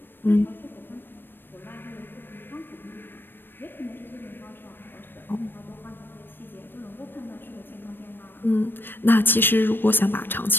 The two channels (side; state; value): right; late; 0.096 ms